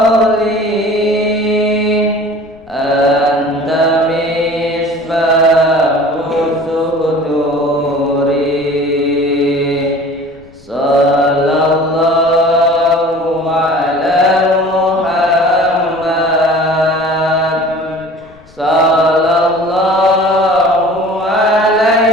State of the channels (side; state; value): left; noise; rumble, 27 dB below the sound